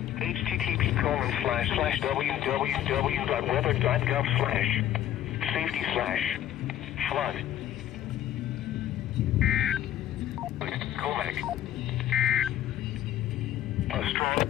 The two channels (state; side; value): quieter; right; 11.9 dB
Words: http://www.weather.gov/safety/flood. Comac. A strong